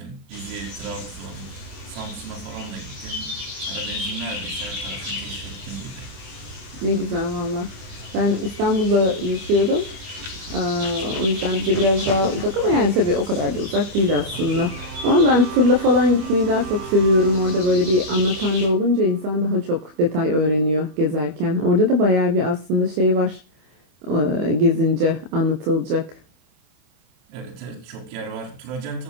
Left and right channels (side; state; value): left; late; 28 ms